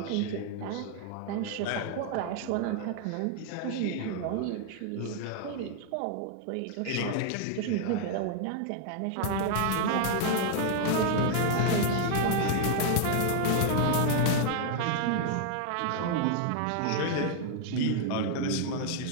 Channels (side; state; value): both; different; correlation 0.00